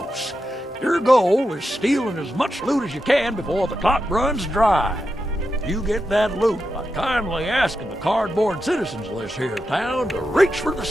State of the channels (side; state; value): both; normal; correlation 0.88